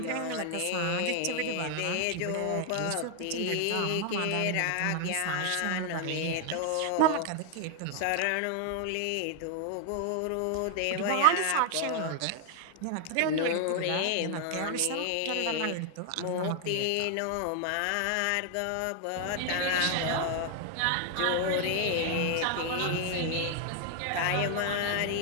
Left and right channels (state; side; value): different; both; correlation 0.00